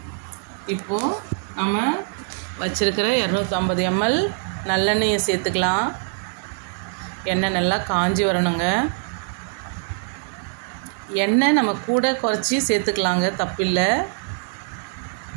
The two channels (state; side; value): silent; left; 57 dB below the other